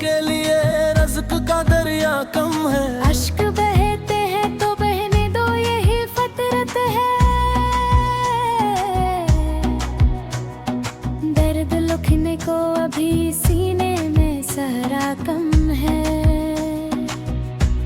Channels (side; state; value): both; identical; correlation 1.00